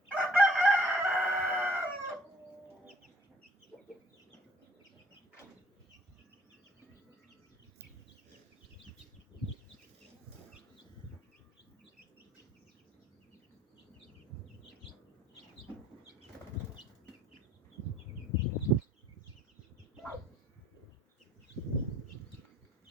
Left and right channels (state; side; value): normal; both; correlation 0.58